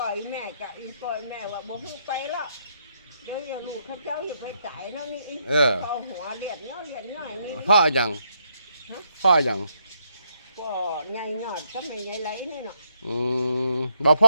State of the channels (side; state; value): both; inverted; correlation -0.76